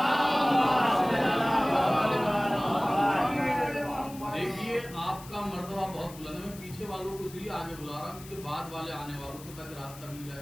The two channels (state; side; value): noise; left; hiss, 18 dB below the sound